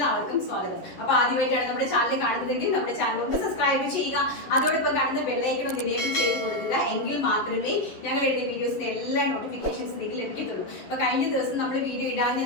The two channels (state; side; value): late; right; 11 ms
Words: സ്വാഗതം. അപ്പോൾ ആദ്യമായിട്ടാണ് നമ്മുടെ ചാനൽ കാണുന്നതെങ്കിൽ നമ്മുടെ ചാനൽ ഒന്ന് സബ്സ്ക്രൈബ് ചെയ്യുക. അതോടൊപ്പം കാണുന്ന ബെൽ ഐക്കൺ ഒന്ന് എനേബിൾ ചെയ്ത് കൊടുക്കുക. എങ്കിൽ മാത്രമേ ഞങ്ങൾ എഴുതിയ വീഡിയോസിന്റെ എല്ലാ നോട്ടിഫിക്കേഷൻസ് നിങ്ങൾക്ക് ലഭിക്കത്തുള്ളൂ. അപ്പോൾ കഴിഞ്ഞ ദിവസം നമ്മൾ വീഡിയോ